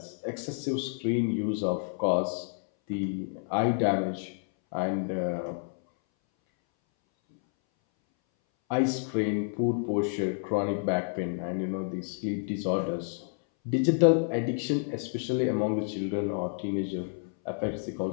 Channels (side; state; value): right; silent; 58 dB below the other